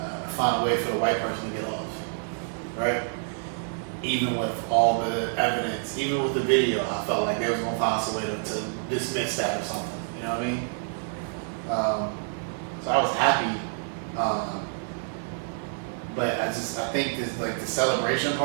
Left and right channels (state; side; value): silent; left; digital silence